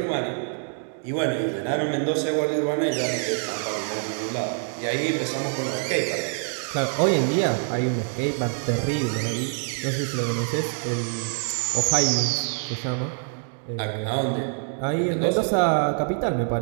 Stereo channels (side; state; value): left; silent; 61 dB below the other